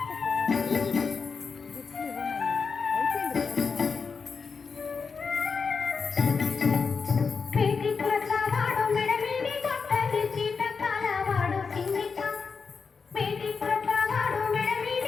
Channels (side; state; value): right; quieter; 5.3 dB